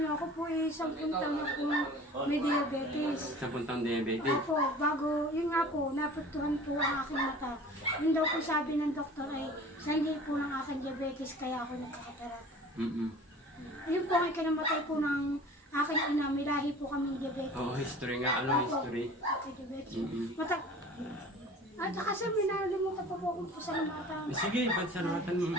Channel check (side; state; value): both; normal; correlation 0.43